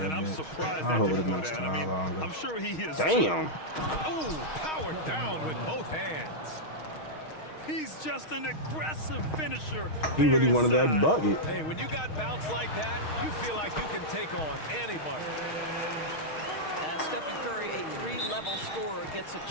And I'm bitch. surprised I'll hold that it didn't go next down. time I mean, longer. I'm sure he is. Damn. Oh, powered down with both hands. He's just an aggressive finisher. He really wanted that bucket. Hey, when you got bounce like that, you feel like you can take on anybody. Stephen Curry, a 3-level scorer, gets a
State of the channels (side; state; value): right; late; 6.4 ms